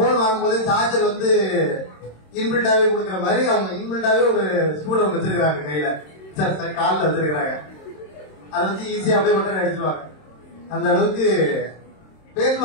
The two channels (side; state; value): right; late; 26 ms